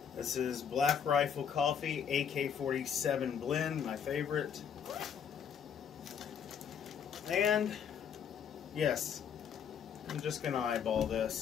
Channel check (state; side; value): quieter; right; 7.7 dB